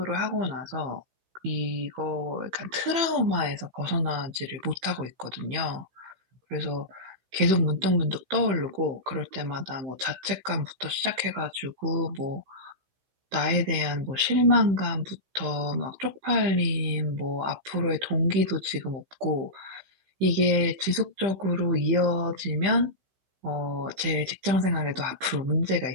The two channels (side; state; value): left; late; 15 ms